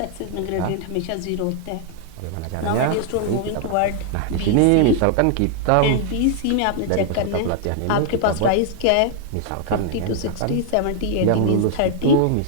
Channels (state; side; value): different; both; correlation 0.00